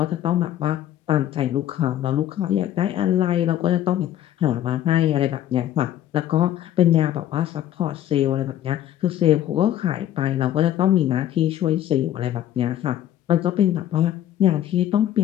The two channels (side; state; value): right; quieter; 11.9 dB